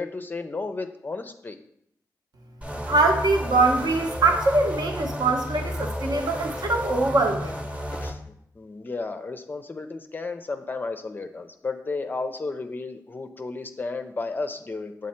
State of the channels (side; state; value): both; normal; correlation 0.57